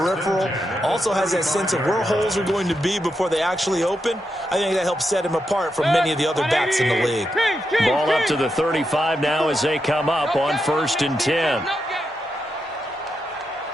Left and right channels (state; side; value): normal; both; correlation 0.85